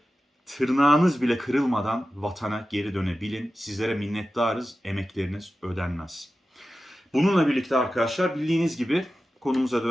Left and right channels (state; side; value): normal; both; correlation 0.93